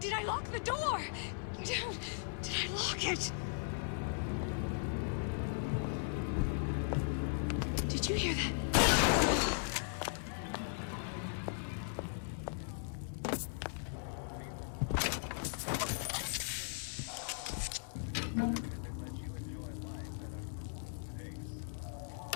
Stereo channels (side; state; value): right; silent; 52 dB below the other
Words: I lock the door? Did I lock it? Did you hear that?